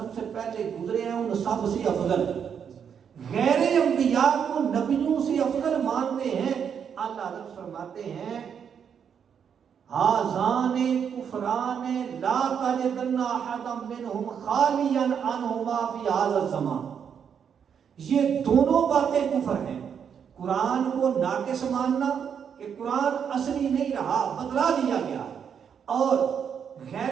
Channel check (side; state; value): left; quieter; 7.6 dB